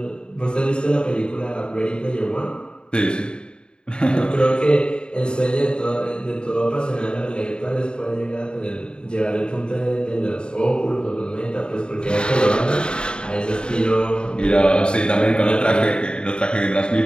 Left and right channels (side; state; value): right; late; 0.050 ms